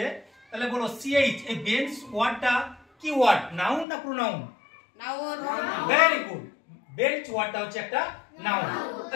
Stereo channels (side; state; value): right; drops out; at 3.9 s